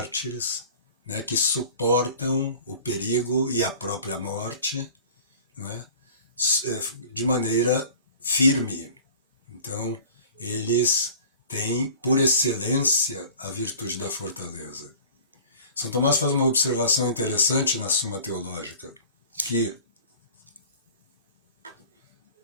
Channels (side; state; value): both; inverted; correlation -0.44